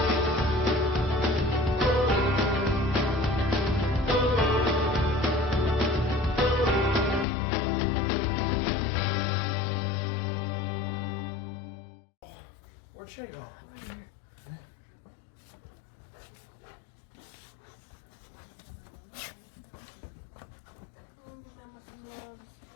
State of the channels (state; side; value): drops out; right; at 7.2 s